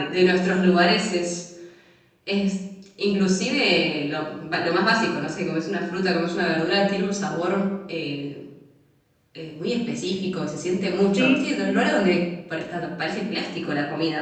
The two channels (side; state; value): both; identical; correlation 1.00